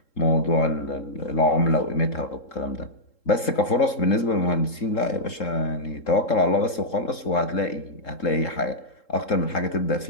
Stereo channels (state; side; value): late; right; 3.7 ms